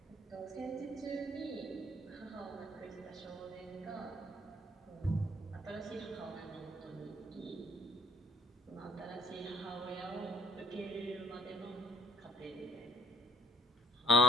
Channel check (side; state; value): both; normal; correlation 0.60